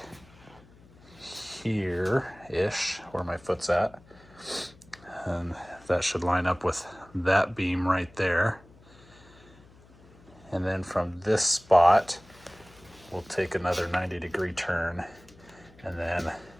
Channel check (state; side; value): noise; left; hum, 25 dB below the sound